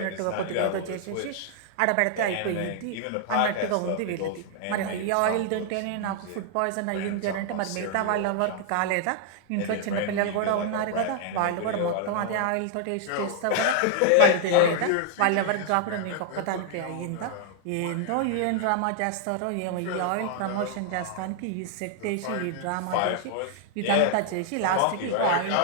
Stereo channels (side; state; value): both; different; correlation 0.00